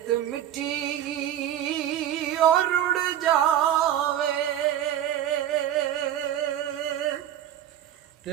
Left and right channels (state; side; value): quieter; left; 11.1 dB